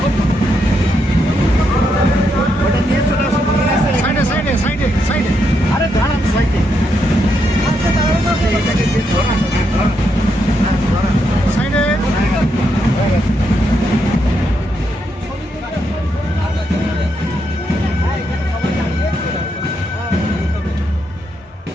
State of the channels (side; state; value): both; normal; correlation 0.80